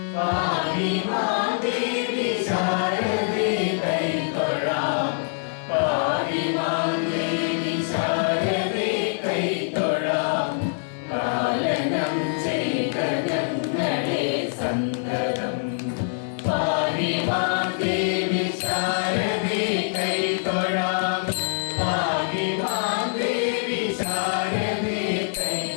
പാഹി മാം ദേവി ശാരദേ കൈതൊഴാം പാഹി മാം ദേവി ശാരദേ കൈതൊഴാം പാലനം ചെയ്ത ഞങ്ങളെ സന്തതം പാഹി മാം ദേവി ശാരദേ കൈതൊഴാം പാഹി മാം ദേവി ശാരദേ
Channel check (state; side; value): silent; right; 58 dB below the other